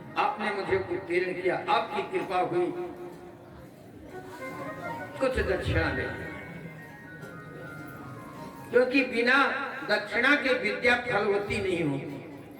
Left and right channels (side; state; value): both; identical; correlation 1.00